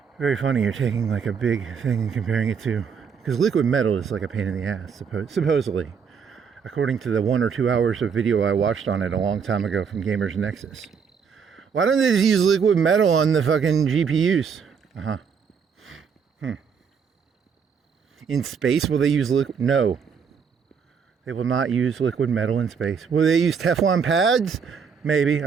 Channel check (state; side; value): quieter; left; 6.4 dB